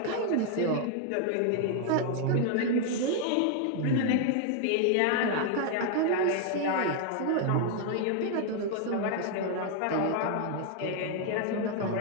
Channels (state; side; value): different; both; correlation 0.00